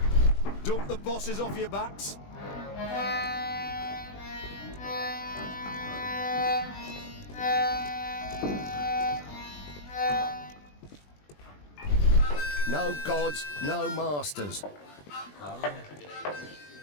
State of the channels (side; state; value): right; late; 20 ms